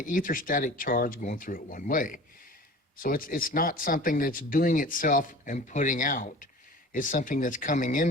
etherstatic charge going through it one way. So it's not something that's doing itself and putting out. It's something that's coming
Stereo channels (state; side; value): normal; both; correlation 0.41